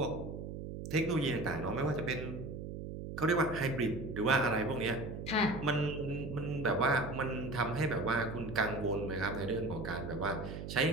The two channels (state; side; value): noise; right; hum, 7 dB below the sound